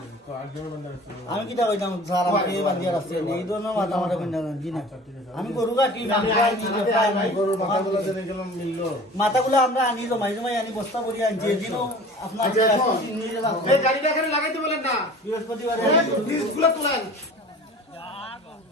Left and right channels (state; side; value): normal; both; correlation 0.42